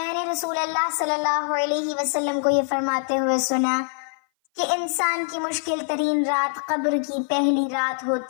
نے رسول اللہ صلی اللہ علیہ وسلم کو یہ فرماتے ہوئے سنا کہ انسان کی مشکل ترین رات قبر کی پہلی رات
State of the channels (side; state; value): right; silent; 57 dB below the other